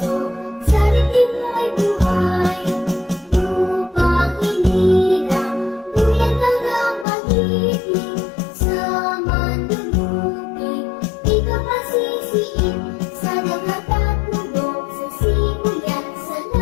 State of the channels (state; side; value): drops out; right; at 7.1 s